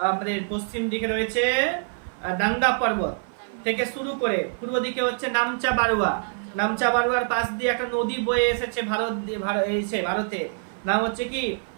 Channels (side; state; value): left; silent; 55 dB below the other